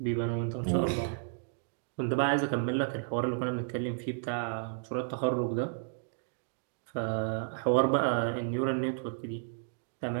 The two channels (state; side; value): silent; left; digital silence